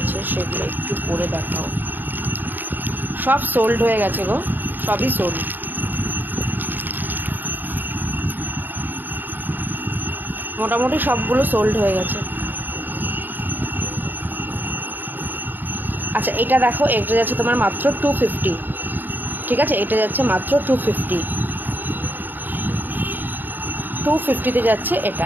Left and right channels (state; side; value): late; left; 0.091 ms